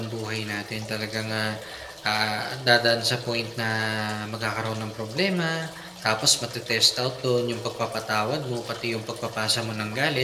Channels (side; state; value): both; identical; correlation 1.00